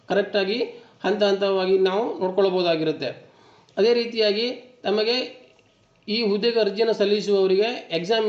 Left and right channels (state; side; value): identical; both; correlation 1.00